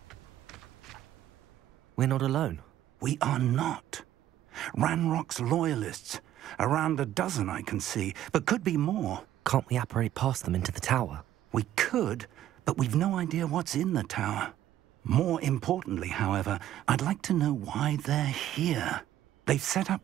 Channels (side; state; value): left; quieter; 12.4 dB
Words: We're not alone. We are not. Ranrock's loyalists. Around a dozen I can see, but could be more. Can't we apparate past them into the tower? We could, but we've no idea what's in the tower. More importantly, however, I'd like to know why they're here. They've set